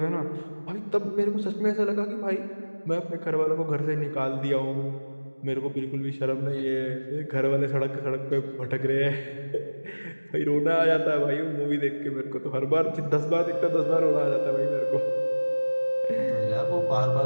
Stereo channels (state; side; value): inverted; both; correlation -1.00